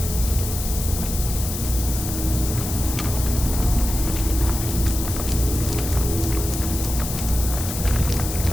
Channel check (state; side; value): noise; left; hiss, 6 dB below the sound